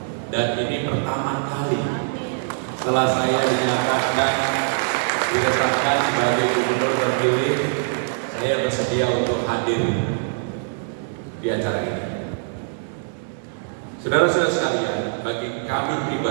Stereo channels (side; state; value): left; silent; digital silence